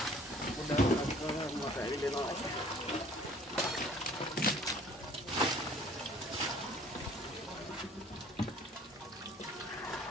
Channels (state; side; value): normal; both; correlation 0.53